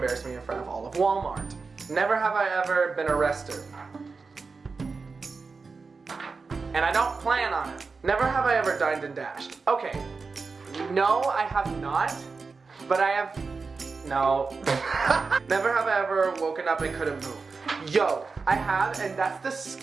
me in front of all of Walmart. Never have I ever been arrested. And I don't plan on it. Never have I ever dined and dashed. Okay, no, I have not, but I have, no. Never have I ever woken up and couldn't move. Yo, I have, and that's the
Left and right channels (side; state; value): left; quieter; 4.5 dB